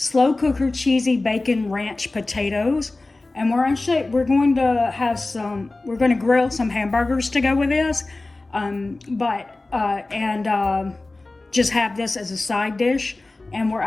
cooker cheesy bacon ranch potatoes. And we're going to grill some hamburgers to go with this, just have this as a side dish. And we're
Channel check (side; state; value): right; quieter; 3.1 dB